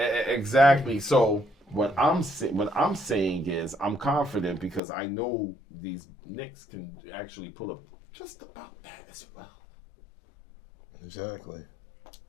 exactly. So what I'm saying is I'm confident because I know these Knicks can actually pull up just about that as well Exactly.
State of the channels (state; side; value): drops out; right; at 4.8 s